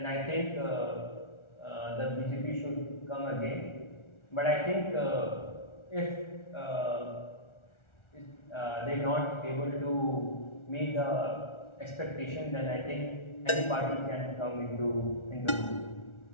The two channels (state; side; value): late; right; 1.4 ms